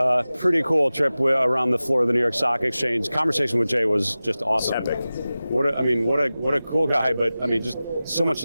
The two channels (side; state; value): both; inverted; correlation -0.96